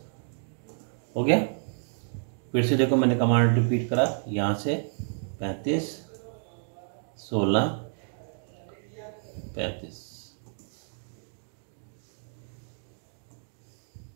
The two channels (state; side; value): silent; left; digital silence